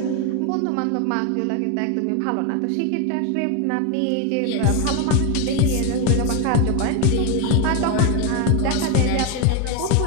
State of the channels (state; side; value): different; both; correlation 0.01